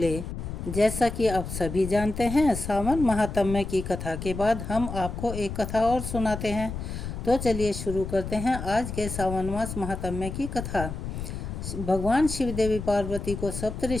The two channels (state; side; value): noise; left; rumble, 7 dB below the sound